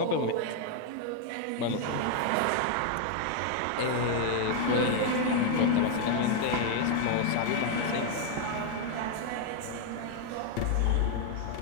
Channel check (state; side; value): different; both; correlation 0.00